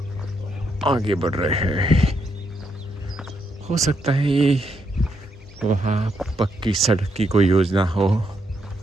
आगे बढ़ रहे हैं। हो सकता है ये वहाँ पक्की सड़क की कोई योजना हो,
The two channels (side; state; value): both; normal; correlation 0.78